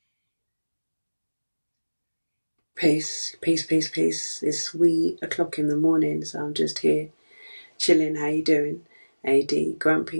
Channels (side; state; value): both; inverted; correlation -1.00